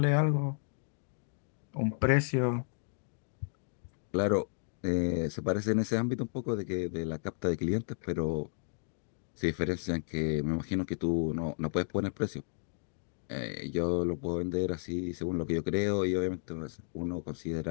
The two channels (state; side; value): silent; right; digital silence